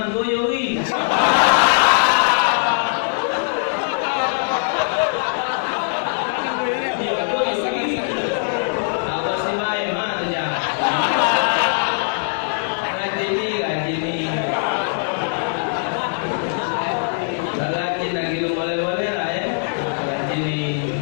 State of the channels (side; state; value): right; silent; digital silence